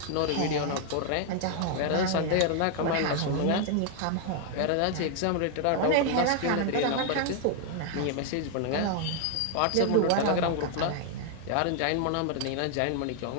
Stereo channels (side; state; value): both; different; correlation 0.00